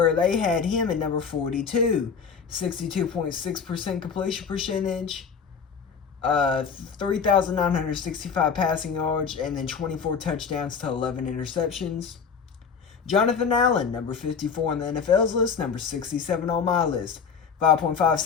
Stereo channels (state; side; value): quieter; right; 6.2 dB